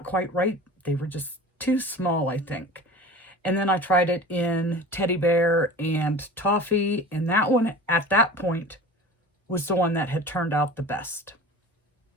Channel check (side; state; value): both; normal; correlation 0.37